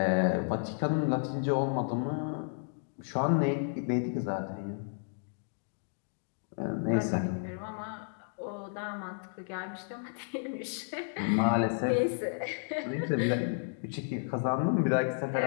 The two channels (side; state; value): right; silent; digital silence